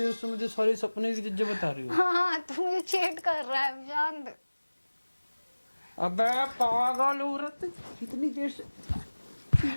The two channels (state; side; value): inverted; both; correlation -1.00